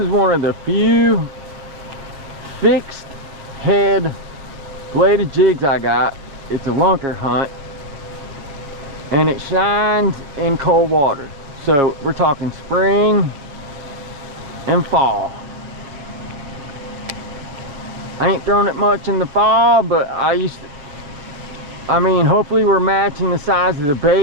one of the few fixed head bladed jigs I got. It's a LunkerHunt, and it shines in cold water. So we're talking spring and fall. I ain't thrown it much in the fall, but I mean, hopefully we're matching the size of the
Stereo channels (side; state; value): left; late; 7.2 ms